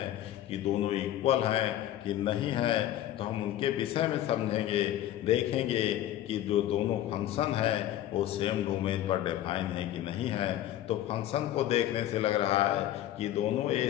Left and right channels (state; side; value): quieter; right; 12.9 dB